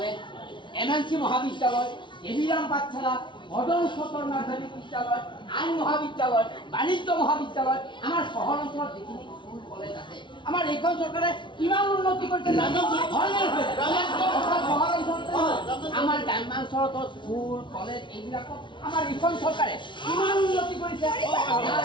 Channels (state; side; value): late; right; 0.24 ms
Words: MNC মহাবিদ্যালয় এভিৰাম পাঠশালা মদন সতৰ নাৰ্চাৰী বিদ্যালয় আইন মহাবিদ্যালয় বাণিজ্য মহাবিদ্যালয় আমাৰ চহৰ অঞ্চলত যিখিনি স্কুল কলেজ আছে আমাৰ এইখন চৰকাৰে কিমান উন্নতি কৰিছে আমাৰ গ্ৰাম্যাঞ্চলত স্কুল কলেজ এইবিলাকত আমাৰ এইখন চৰকাৰে কিমান উন্নতি কৰিছে